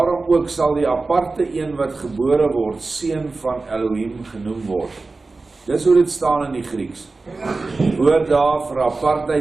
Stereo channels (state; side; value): quieter; left; 3.7 dB